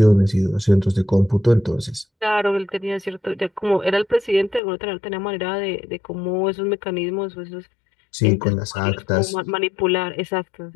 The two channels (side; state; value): right; drops out; at 4.6 s